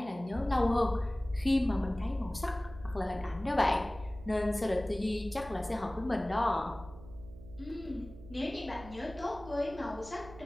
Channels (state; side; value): noise; right; hum, 17 dB below the sound